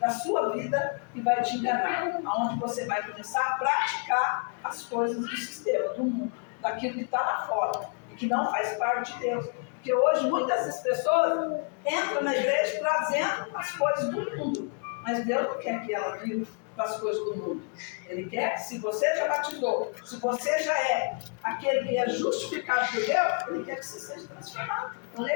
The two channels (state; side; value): quieter; right; 38.8 dB